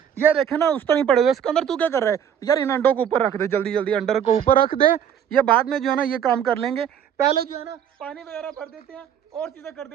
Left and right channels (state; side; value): quieter; left; 8.8 dB